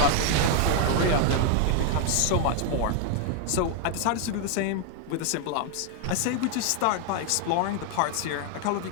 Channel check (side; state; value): both; different; correlation 0.00